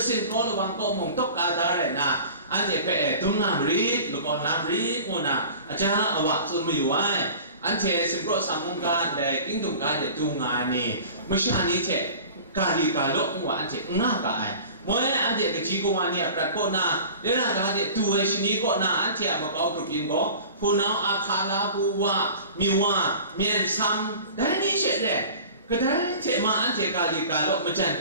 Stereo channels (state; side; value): inverted; both; correlation -0.40